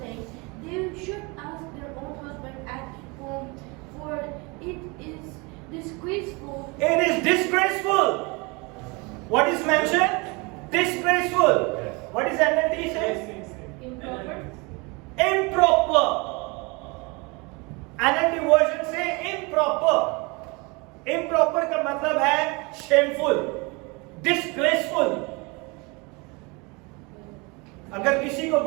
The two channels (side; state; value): left; quieter; 27.9 dB